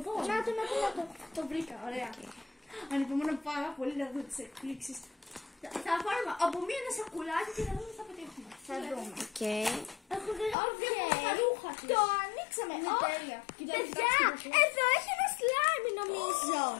εδώ. Να το. Το βρήκα, ωραία. Ανυπομονώ πάρα πολύ να δω τις εκπλήξεις. Θα πάρουμε από ένα σακουλάκι και να δούμε τι θα πετύχουμε. Θα δούμε. Έχω δει τα ρούχα της. Το ανοίξαμε. Είναι τέλεια. Παιδιά, εδώ έχει ένα slime νομίζω.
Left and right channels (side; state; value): right; drops out; at 10.6 s